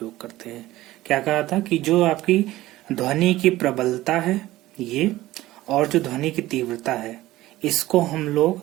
करते हैं। क्या कहा था कि जो आपकी ध्वनि की प्रबलता है ये, और जो ध्वनि की तीव्रता है, इसको हम लोग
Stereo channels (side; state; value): left; quieter; 16.6 dB